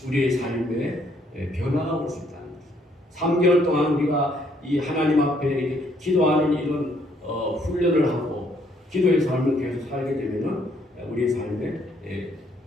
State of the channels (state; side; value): normal; both; correlation 0.68